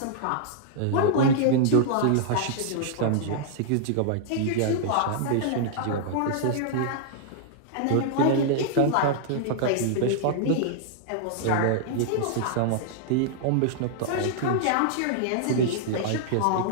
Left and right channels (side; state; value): both; different; correlation -0.01